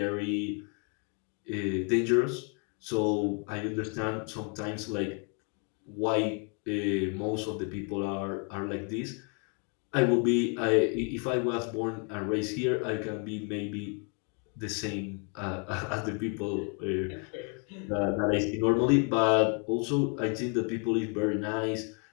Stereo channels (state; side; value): quieter; right; 37.0 dB